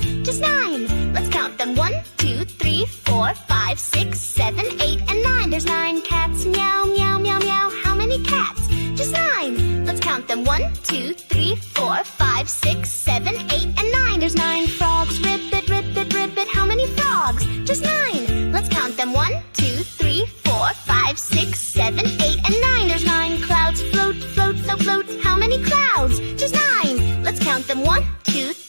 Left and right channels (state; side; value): inverted; both; correlation -1.00